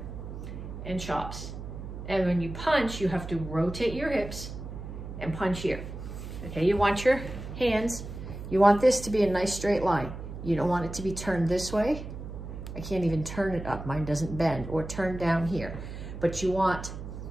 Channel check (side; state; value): right; noise; hum, 9 dB below the sound